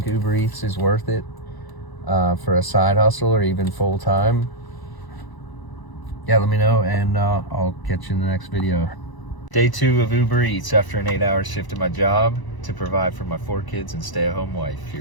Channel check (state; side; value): late; right; 1.0 ms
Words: Uber Eats is worth it for a side hustle or even full time? Yeah, let me know, and I'll catch you in the next video. Day 2 of Uber Eats after an 8-hour shift at my job to provide for my 4 kids and stay-at-home wife.